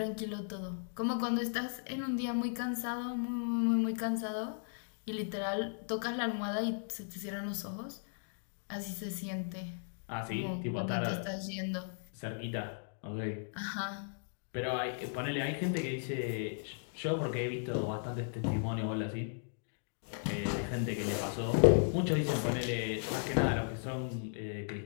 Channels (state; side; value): silent; right; digital silence